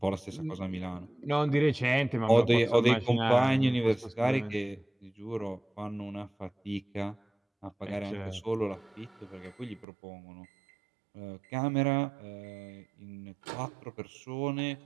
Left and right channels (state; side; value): drops out; left; at 9.9 s